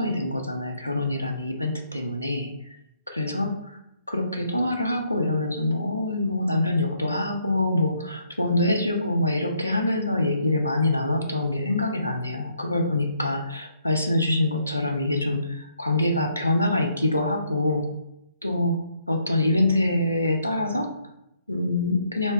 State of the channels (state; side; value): inverted; both; correlation -0.71